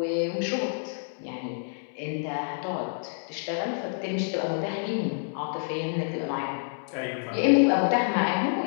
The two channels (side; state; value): right; silent; 59 dB below the other